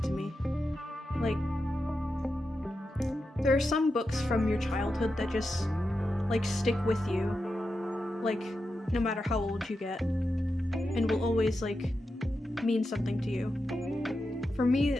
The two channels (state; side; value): normal; both; correlation 0.89